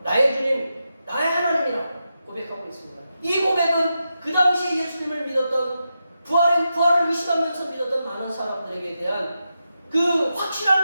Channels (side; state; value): both; inverted; correlation -0.88